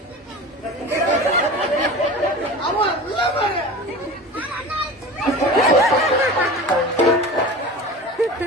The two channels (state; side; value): normal; both; correlation 0.34